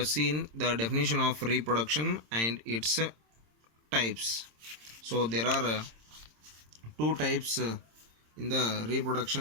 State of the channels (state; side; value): late; left; 26 ms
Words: seen the definition of reproduction and its types. So there are two types in the